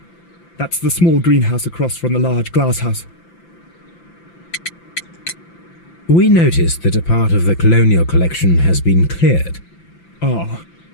That's the small greenhouse across from the large glass house. We noticed that a part of the colonial collection has been cleared. Ah.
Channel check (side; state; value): right; late; 5.9 ms